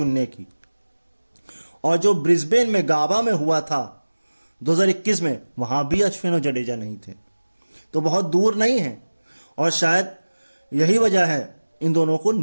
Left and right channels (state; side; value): inverted; both; correlation -1.00